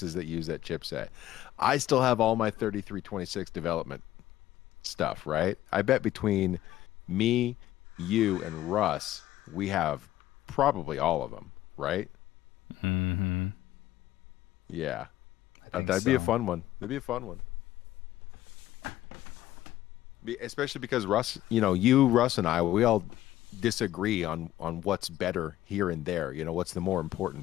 that use that chipset? I still have all my 3326 development stuff, right? I bet between me, you, and Russ, we have probably all of them, right? Mm-hmm. Yeah. That'd be a fun one. Especially because Russ, Russ and I, we all disagree on what's better here and there. What's the more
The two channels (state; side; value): quieter; right; 14.2 dB